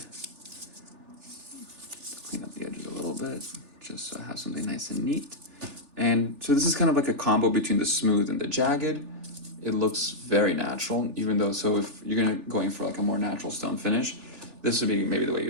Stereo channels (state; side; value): late; left; 3.4 ms